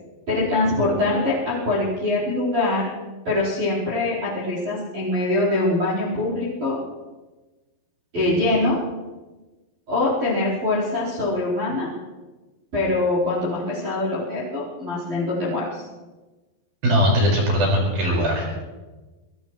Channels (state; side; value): late; left; 12 ms